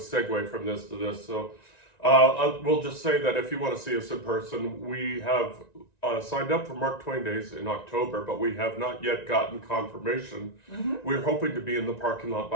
from this to this? So we'll just say that if you want to see us in person, we have signed up for Mark Twain Days in October, but we have not yet gotten confirmation. We're hoping to be in the parking lot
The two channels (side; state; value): right; late; 1.9 ms